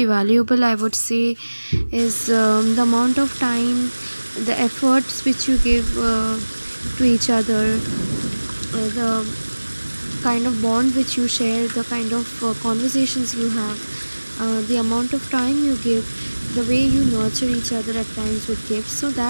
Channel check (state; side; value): inverted; both; correlation -1.00